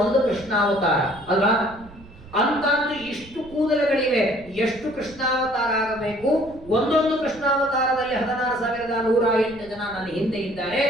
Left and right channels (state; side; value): noise; right; rumble, 21 dB below the sound